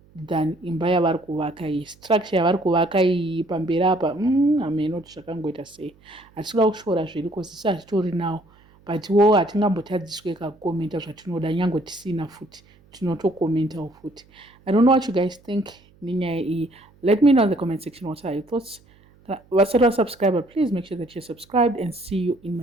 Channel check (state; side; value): noise; right; hum, 29 dB below the sound